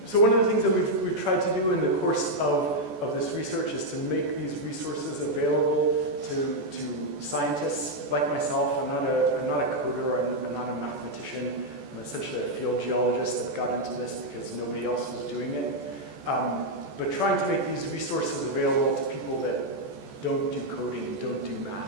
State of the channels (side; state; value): left; late; 14 ms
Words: so one of the things that we've tried to do in the course of this research is to make these resources available to scientists like myself. I'm not a coder, I'm not a mathematician, I'm essentially a field geologist that got into this because nobody else was doing it. But trying to make these resources available to people that don't do coding, don't do math.